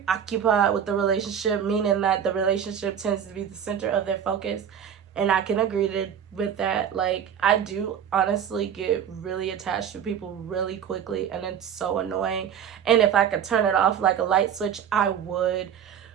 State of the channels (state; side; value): quieter; left; 8.6 dB